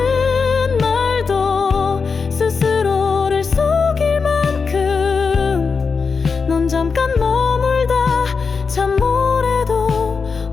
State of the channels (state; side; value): quieter; right; 5.1 dB